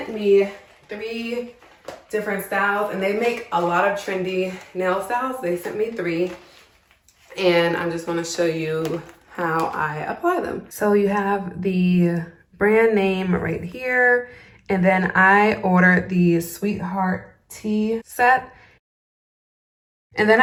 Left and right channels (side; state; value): both; identical; correlation 1.00